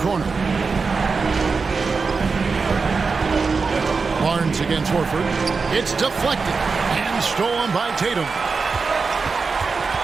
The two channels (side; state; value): left; quieter; 4.7 dB